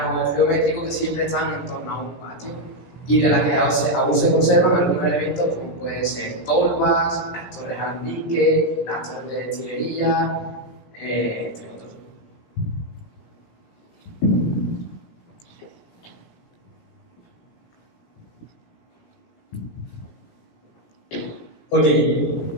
geométrico que siempre están en torno a un patio y de la que aún se conservan algunos elementos como pueden ser tolvas, las torres alambique, las torres de destilería, entre otros. Ok,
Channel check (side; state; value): right; late; 17 ms